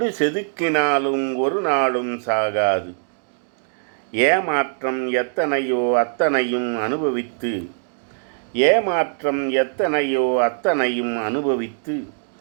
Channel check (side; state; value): left; silent; digital silence